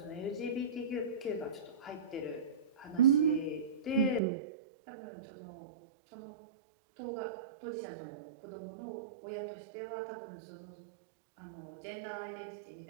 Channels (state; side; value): drops out; left; at 4.2 s